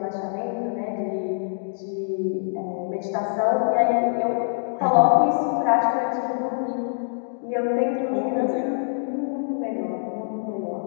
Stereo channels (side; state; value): right; silent; digital silence